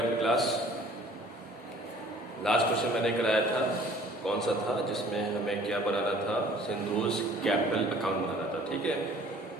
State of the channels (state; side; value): normal; both; correlation 0.53